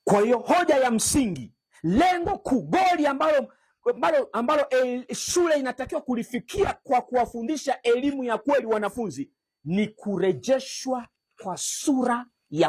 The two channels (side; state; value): both; identical; correlation 1.00